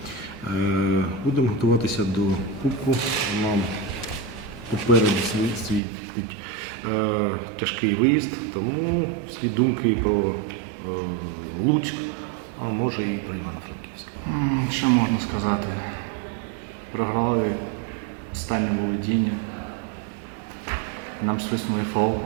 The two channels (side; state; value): left; drops out; at 5.8 s